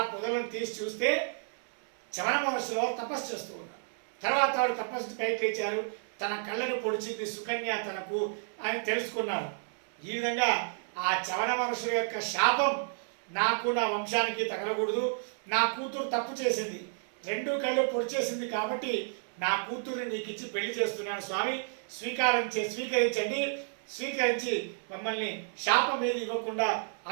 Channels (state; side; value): silent; left; 57 dB below the other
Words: పొదలను తీసి చూస్తే చవన మహర్షులు తపస్సు చేస్తూ ఉన్నారు. తర్వాత వాడు తపస్సు పైకి లేచారు. తన కళ్ళను పొడిచింది సుకన్య తనకు అని తెలుసుకున్నారు. ఈ విధంగా ఆ చవన మహర్షుల యొక్క శాపం నాకు నా వంశానికి తగలకూడదు. నా కూతురు తప్పు చేసింది, 2 కళ్ళు పొడిచేసింది కాబట్టి నా కూతురు నీకు ఇచ్చి పెళ్లి చేస్తున్నాను స్వామి, స్వీకరించండి, స్వీకరించి మమ్మల్ని శాపం ఏది ఇవ్వకుండా